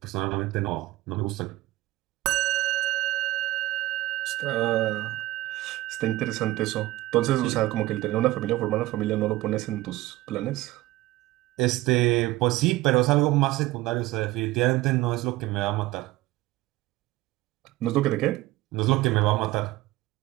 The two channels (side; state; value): left; quieter; 17.6 dB